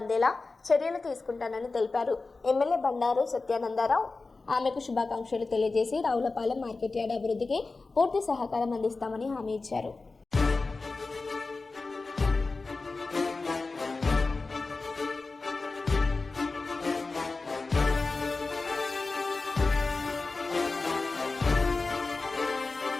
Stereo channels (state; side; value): quieter; right; 3.8 dB